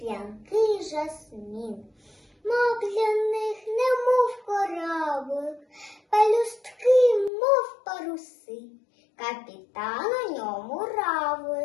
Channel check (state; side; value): drops out; right; at 7.3 s